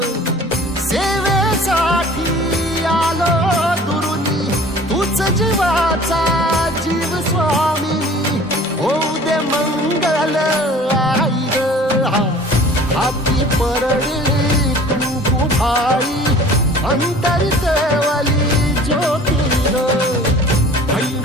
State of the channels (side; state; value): both; normal; correlation 0.47